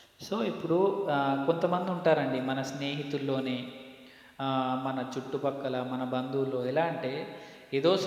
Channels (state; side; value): identical; both; correlation 1.00